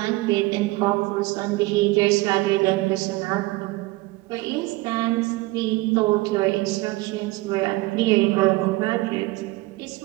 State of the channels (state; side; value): quieter; left; 21.0 dB